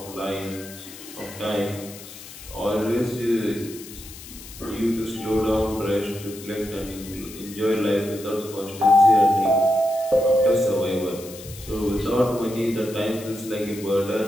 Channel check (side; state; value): left; noise; hiss, 15 dB below the sound